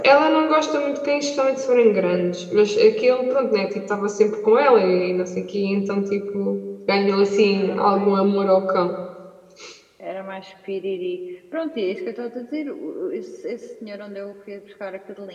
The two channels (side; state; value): both; identical; correlation 1.00